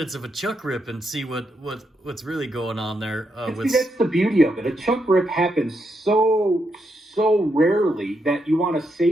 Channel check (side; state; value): both; normal; correlation 0.81